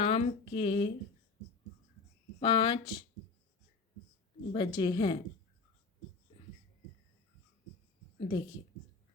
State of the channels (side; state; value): right; quieter; 4.5 dB